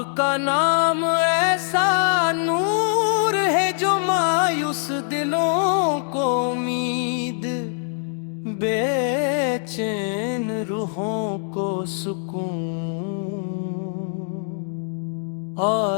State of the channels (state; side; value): silent; right; 63 dB below the other